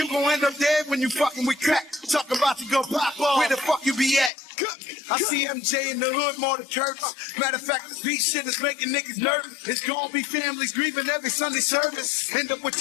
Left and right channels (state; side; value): drops out; right; at 4.3 s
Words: gon' end up dead when you fucking with crack. Talk about to go pop off. Where the fuck you be at? I see MJ in the hood more than church. Matter of fact, this beat shit is making niggas nervous. It's gonna be families grieving every Sunday service. End up with